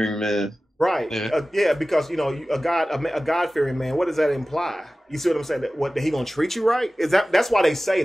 man? Right. Yeah, because a God-fearing man. What does that imply? You see what I'm saying? That he gonna treat you right? That's why they say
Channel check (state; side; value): normal; both; correlation 0.96